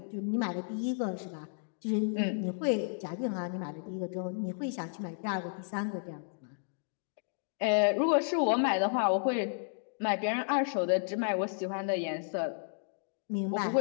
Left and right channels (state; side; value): silent; right; digital silence